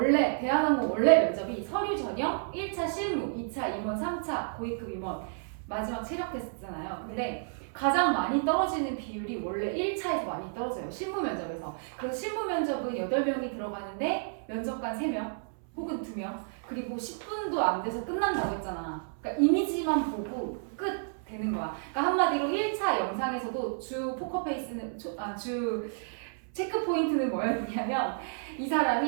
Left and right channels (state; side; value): silent; left; 57 dB below the other